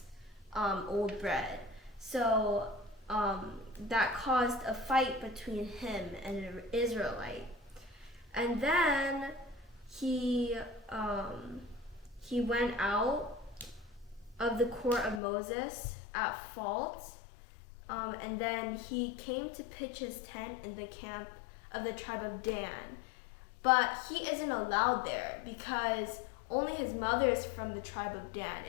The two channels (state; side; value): drops out; right; at 15.2 s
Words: old bread. So that caused a fight between him and an Israelite. And then he went out of the court of Moses at fault, and then he came to pitch his tent in the camp of the tribe of Dan. But he isn't allowed there because only his mother is from the tribe of Dan,